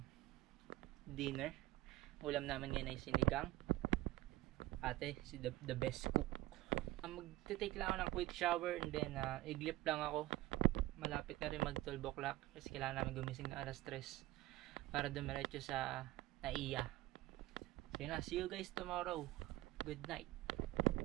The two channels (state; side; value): quieter; left; 17.0 dB